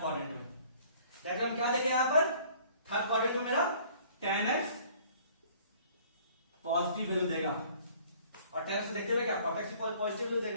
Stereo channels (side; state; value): both; inverted; correlation -0.55